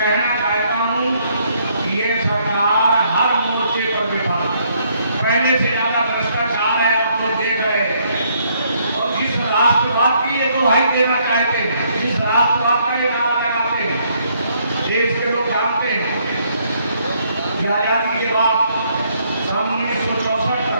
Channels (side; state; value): both; inverted; correlation -0.69